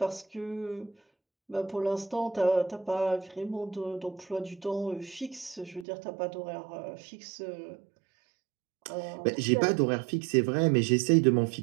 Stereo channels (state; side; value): drops out; left; at 5.9 s